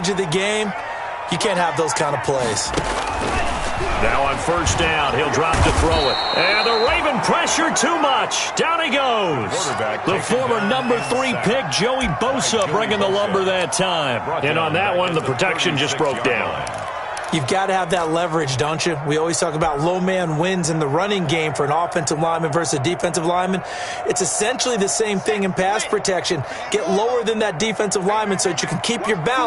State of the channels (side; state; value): both; identical; correlation 1.00